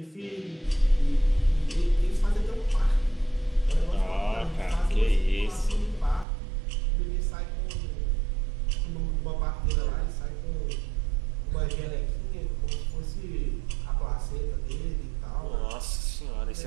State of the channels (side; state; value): left; drops out; at 6.2 s